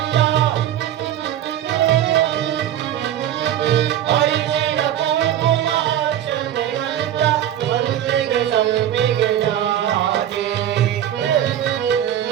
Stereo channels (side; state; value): left; quieter; 11.2 dB